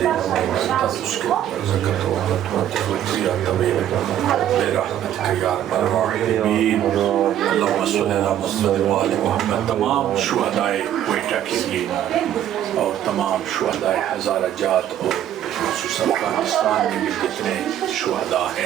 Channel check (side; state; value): left; quieter; 11.1 dB